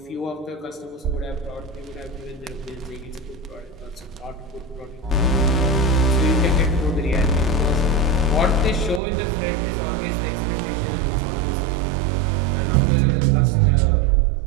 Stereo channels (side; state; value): left; drops out; at 9.0 s